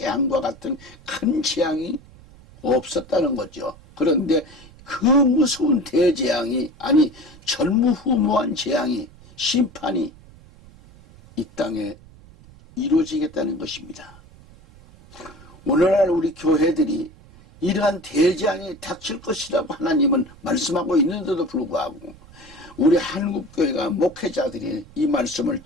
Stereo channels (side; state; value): right; noise; rumble, 23 dB below the sound